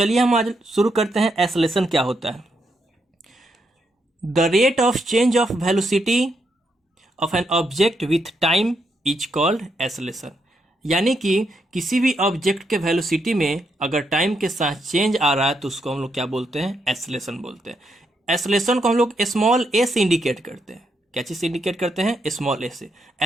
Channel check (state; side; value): normal; both; correlation 0.79